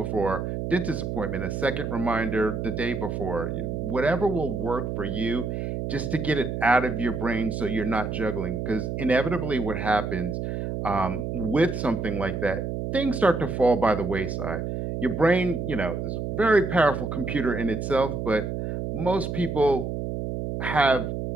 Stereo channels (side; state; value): right; noise; hum, 3 dB below the sound